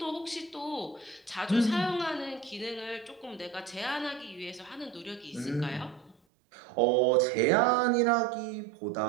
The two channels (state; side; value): drops out; left; at 6.2 s